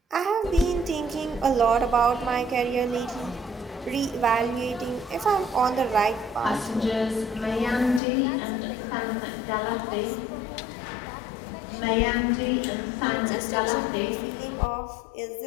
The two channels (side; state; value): right; drops out; at 8.0 s